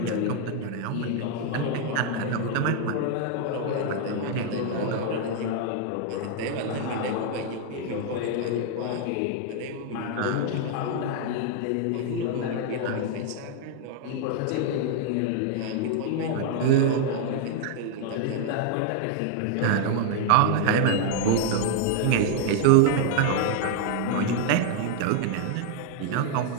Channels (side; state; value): both; different; correlation 0.00